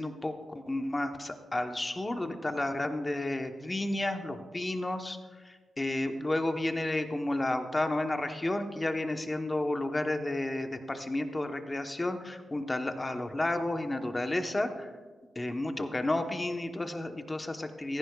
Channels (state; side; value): normal; both; correlation 0.96